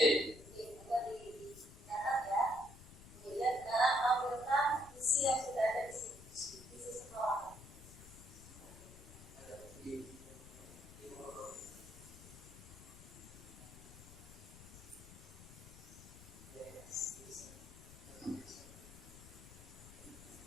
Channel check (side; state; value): left; noise; rumble, 16 dB below the sound